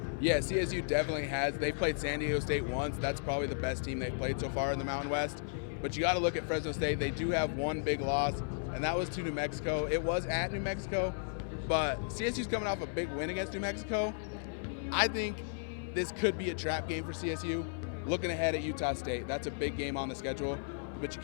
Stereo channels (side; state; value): right; silent; 55 dB below the other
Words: Yeah, CSU definitely has. They played San Diego State once. That's probably the best team they've played so far in the Mountain West. But you got to look at Fresno State. They do have one big loss, and that was to New Mexico. It was at New Mexico, but CSU's coming off a big win against New Mexico. I think this could be a trap game for CSU. Looking ahead at Utah State, that's a big game on the schedule, but you